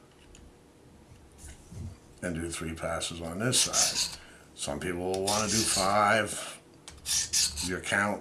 And do 3 passes on this side. Some people will want to do 5. Your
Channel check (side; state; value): both; identical; correlation 1.00